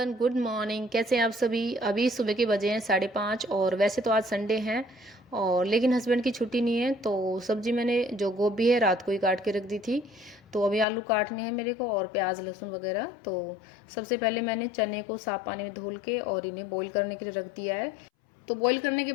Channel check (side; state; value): right; drops out; at 10.9 s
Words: good morning. कैसे हैं आप सभी? अभी सुबह के बजे हैं 5:30 और वैसे तो आज संडे है और लेकिन हस्बैंड की छुट्टी नहीं है। तो सब्जी मैंने जो गोभी है रात को ही काट के रख दी थी। तो अभी आलू काटने हैं मेरे को और प्याज लहसुन वगैरह। तो सबसे पहले मैंने चने को साफ पानी में धुल के और इन्हें बॉईल करने के लिए रख दिया है। तो बॉईल करने के